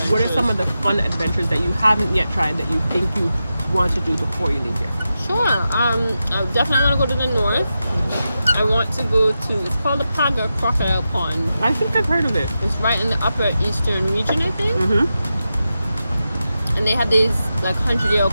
What are some of the fun adventures that you haven't yet tried that you think you want to do before you leave here? Sure. I definitely want to go to the north. I want to go to, it's called the Paga Crocodile Pond. I think I've heard of it. It's right in the upper eastern region, I think. And they have these like 100-year-old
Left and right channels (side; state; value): both; inverted; correlation -0.90